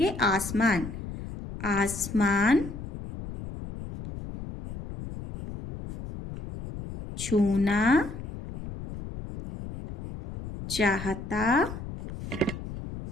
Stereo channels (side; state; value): left; noise; rumble, 10 dB below the sound